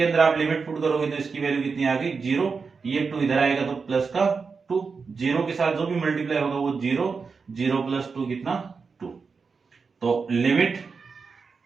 अंदर आप लिमिट पुट करोगे तो इसकी वैल्यू कितनी आ गई 0, ये 2 इधर आएगा तो प्लस का 2, 0 के साथ जो भी मल्टीप्लाई होगा वो 0, 0 प्लस 2 कितना 2। तो limit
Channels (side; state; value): left; quieter; 5.0 dB